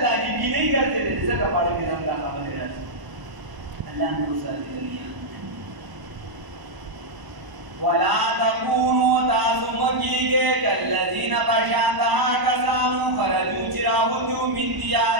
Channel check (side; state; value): left; late; 1.0 ms